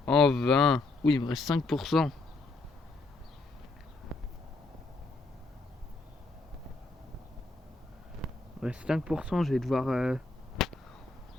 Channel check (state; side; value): quieter; right; 3.3 dB